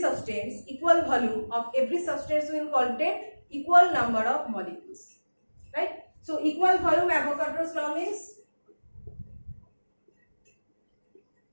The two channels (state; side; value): inverted; both; correlation -1.00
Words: equal volume of every substance will contain equal number of molecules, right? So equal volume, Avogadro's law means